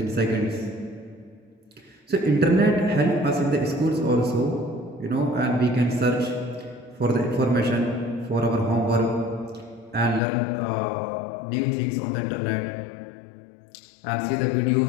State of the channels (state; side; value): drops out; right; at 10.2 s